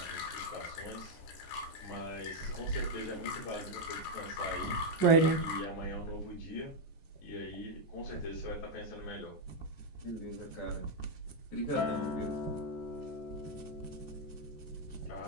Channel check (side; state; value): right; late; 14 ms